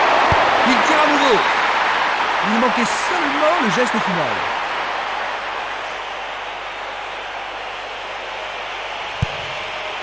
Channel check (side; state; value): left; noise; hum, 27 dB below the sound